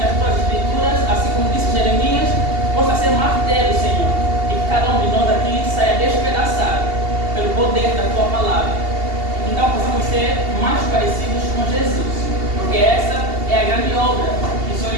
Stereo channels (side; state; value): left; late; 2.8 ms